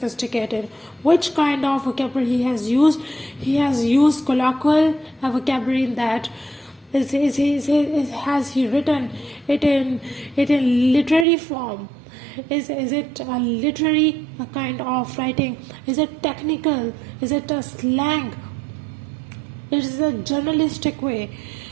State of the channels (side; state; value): left; drops out; at 11.2 s